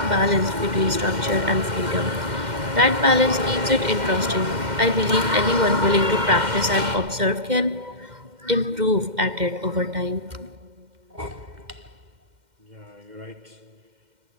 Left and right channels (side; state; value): left; late; 2.1 ms